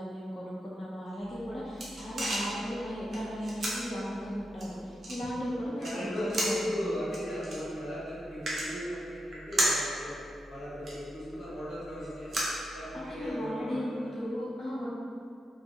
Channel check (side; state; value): both; normal; correlation 0.86